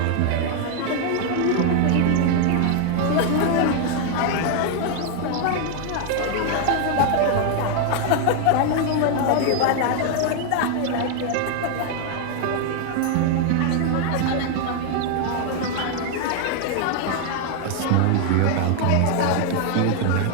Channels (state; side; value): different; both; correlation 0.00